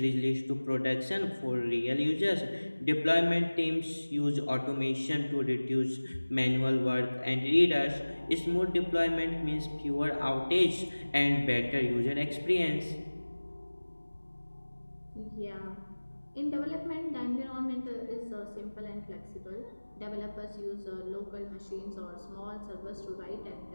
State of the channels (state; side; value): inverted; both; correlation -1.00